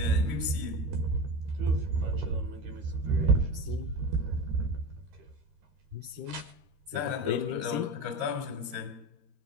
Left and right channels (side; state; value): left; late; 13 ms